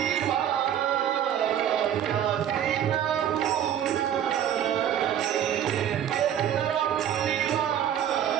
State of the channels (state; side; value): quieter; left; 10.0 dB